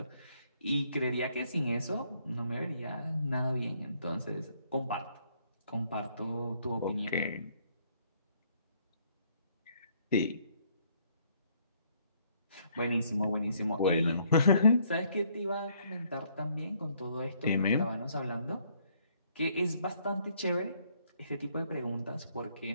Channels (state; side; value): inverted; both; correlation -0.67